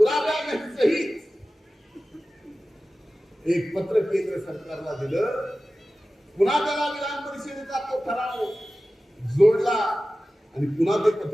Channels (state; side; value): normal; both; correlation 0.96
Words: एक पत्र केंद्र सरकारला दिलं. पुन्हा त्याला विधान परिषदेचा तो ठराव जोडला आणि पुन्हा ते